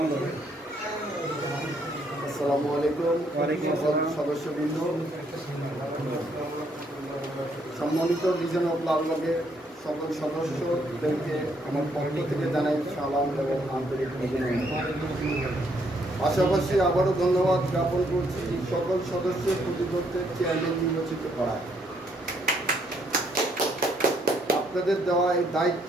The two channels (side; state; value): both; normal; correlation 0.71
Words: আসসালামু আলাইকুম সদস্যবৃন্দ, সম্মানিত লিজেন্ড অফ লালবাগের সকল সদস্যদেরকে আমার পক্ষ থেকে জানাই সালাম এবং আন্তরিক অভিনন্দন। পাশাপাশি আবারও ধন্যবাদ জ্ঞাপন করছি সকল সদস্যের প্রতিপক্ষের চেয়ারম্যান নির্বাচিত করায়। আপনাদের দেওয়া এই দায়িত্ব